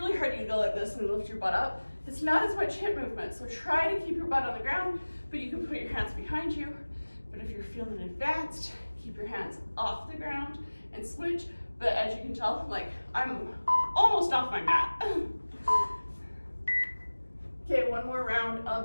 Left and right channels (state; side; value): inverted; both; correlation -1.00